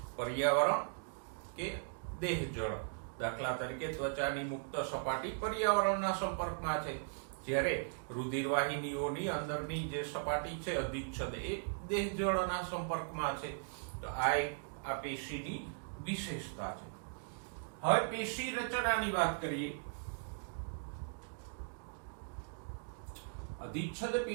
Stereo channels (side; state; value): left; silent; digital silence